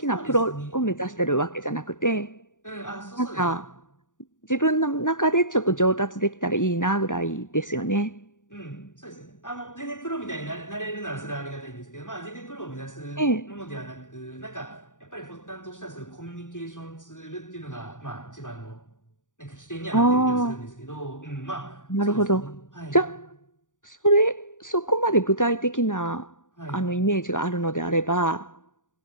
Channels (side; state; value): right; late; 0.87 ms